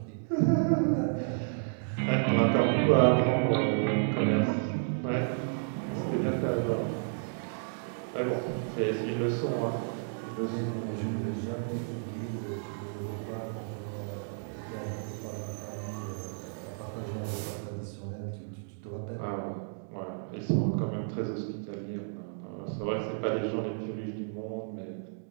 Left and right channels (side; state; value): left; silent; digital silence